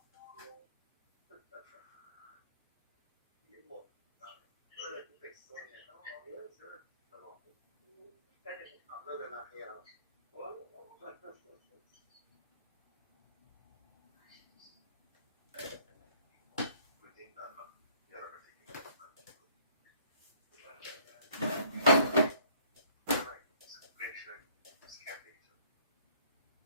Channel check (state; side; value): inverted; both; correlation -0.60